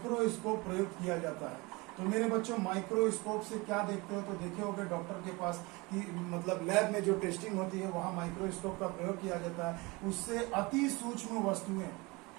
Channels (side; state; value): left; quieter; 24.9 dB